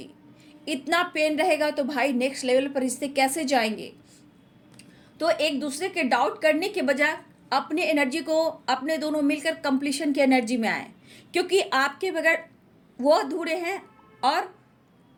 इतना पेन रहेगा तो भाई नेक्स्ट लेवल पर रिश्ते कैसे जाएंगे। तो एक दूसरे के डाउट करने के बजाय अपने एनर्जी को, अपने दोनों मिलकर कंप्लीशन की एनर्जी में आए, क्योंकि आपके बगैर वो अधूरे हैं और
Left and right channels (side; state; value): both; identical; correlation 1.00